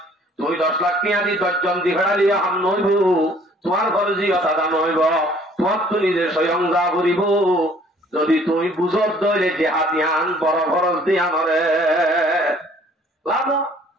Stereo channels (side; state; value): both; normal; correlation 0.57